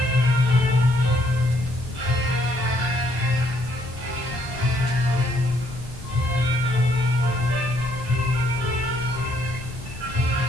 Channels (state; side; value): normal; both; correlation 0.69